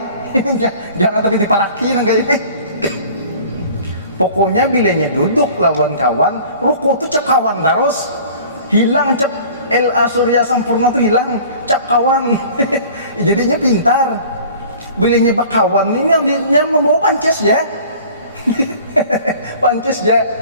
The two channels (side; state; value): both; inverted; correlation -0.46